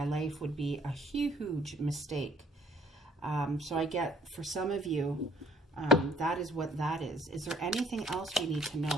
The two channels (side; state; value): both; normal; correlation 0.60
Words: life would be a huge mistake. So I get, for some of you, that is what that is. Is there anything else we need to